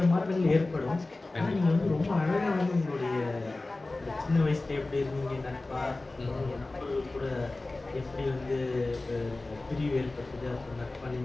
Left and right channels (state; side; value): quieter; right; 3.1 dB